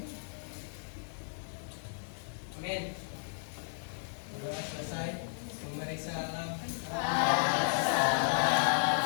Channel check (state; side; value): silent; right; digital silence